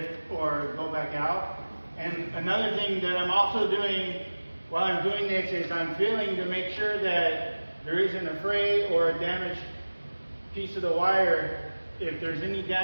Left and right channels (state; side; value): inverted; both; correlation -1.00